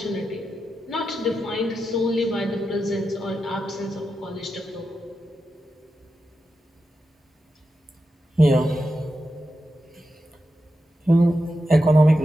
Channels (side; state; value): both; normal; correlation 0.88